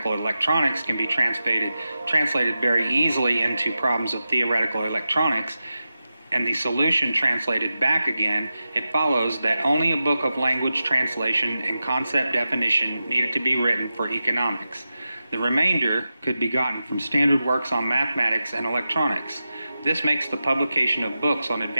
electronics can be translated very easily into problems of theoretical electronics, and the solution translated back again, it follows that only a book of language translation and concept definition needed to be written for economics. The remainder could be gotten from standard works on mathematics and electronics. This makes the publication of books on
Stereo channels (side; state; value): both; inverted; correlation -0.91